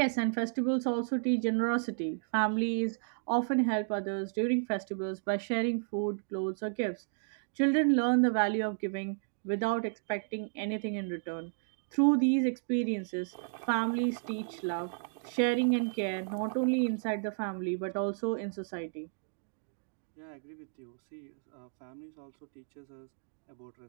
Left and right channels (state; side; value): silent; left; digital silence